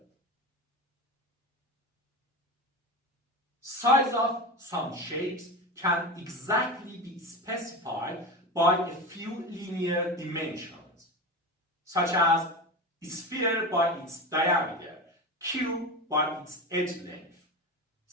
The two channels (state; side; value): normal; both; correlation 0.24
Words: Size of some shapes can exactly be specified by a few linear dimensions, such as a sphere by its diameter, cube by its edge length,